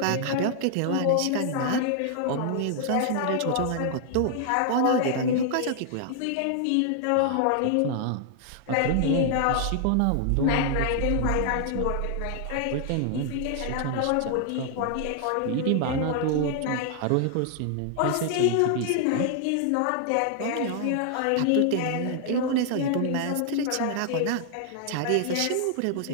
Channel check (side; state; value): both; different; correlation 0.00